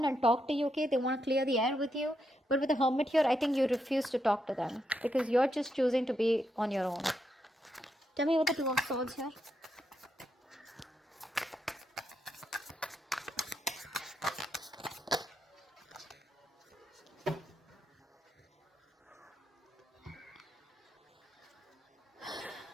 and talk to you, okay? They want to clear the air with you. But with the Hermit here, I think you refuse to talk to them, because you're just choosing to be on your own. Tell me what the Two of Swords here.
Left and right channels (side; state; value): both; normal; correlation 0.82